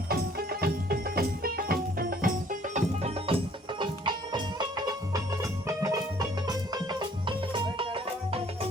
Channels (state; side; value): normal; both; correlation 0.58